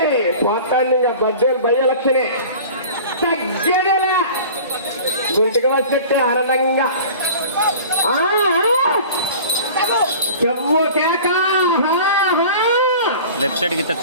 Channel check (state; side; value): inverted; both; correlation -0.41